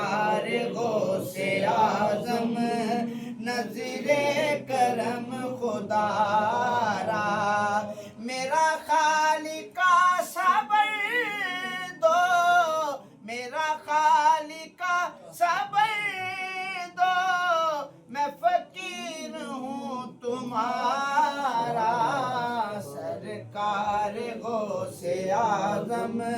غوث اعظم نظر کرم خدا را میرا خالق صبر دو میرا خالق صبر دو میں فقیر ہوں تمہارا سرکار غوث اعظم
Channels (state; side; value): identical; both; correlation 1.00